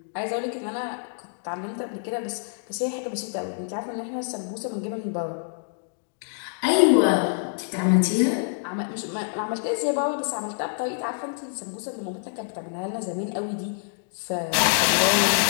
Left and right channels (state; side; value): silent; right; digital silence